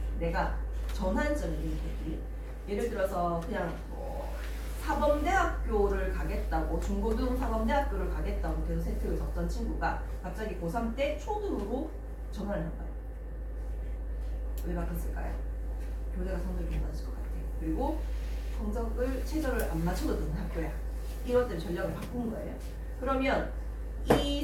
내가 전환점이 되는 계기. 예를 들어서 그냥 사범대학교를 가겠다고, 중고등 사범대학교를 가겠다고 계속 세특을 적던 친구가 갑자기 고3 때 초등으로 전환을 한 거예요. 왜 바꿨을까요? 교재가 성적이 좀 낮을 것 같아. 그리고 성적을 최저를 안 맞춰도 되는 학교야. 이것 때문에 전략을 바꾼 거예요. 그러면 이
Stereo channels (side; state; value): both; identical; correlation 1.00